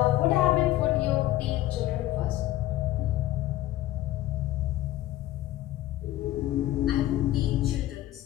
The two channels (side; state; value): right; quieter; 14.9 dB